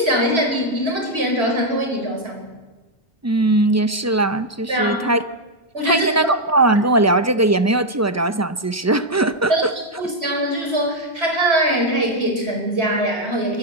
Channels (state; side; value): normal; both; correlation 0.00